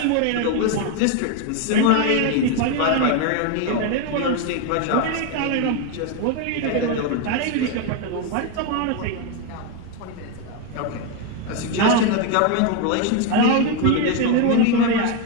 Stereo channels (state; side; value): different; both; correlation 0.02